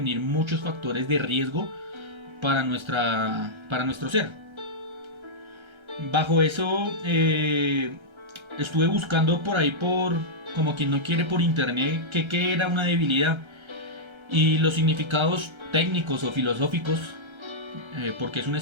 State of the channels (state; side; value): late; left; 1.3 ms